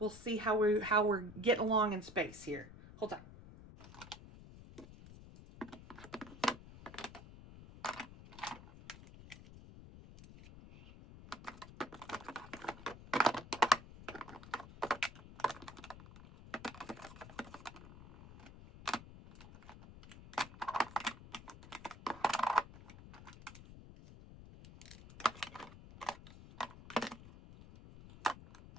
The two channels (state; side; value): noise; left; rumble, 16 dB below the sound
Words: we'll see how we're getting along in space here. Hold on.